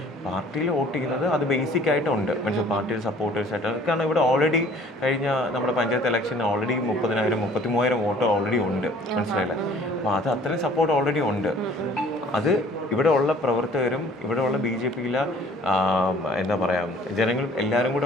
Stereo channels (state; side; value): normal; both; correlation 0.53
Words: പാർട്ടിയിൽ വോട്ട് ചെയ്യുന്നത്. അത് ബേസിക് ആയിട്ടുണ്ട് മനസ്സിലായി. പാർട്ടിയിൽ സപ്പോർട്ടേഴ്സായിട്ട്, കാരണം ഇവിടെ ഓൾറെഡി കഴിഞ്ഞ നമ്മുടെ പഞ്ചായത്ത് ഇലക്ഷന് ഓൾറെഡി 30,000 33,000 വോട്ട് ഓൾറെഡി ഉണ്ട്. മനസ്സിലായില്ലേ? അപ്പോൾ അത് അത്രയും സപ്പോർട്ട് ഓൾറെഡി ഉണ്ട്. അത് ഇവിടെ ഉള്ള പ്രവർത്തകരും ഇവിടെ ഉള്ള BJPയിലെ എന്താ പറയുക ജനങ്ങളും എല്ലാവരും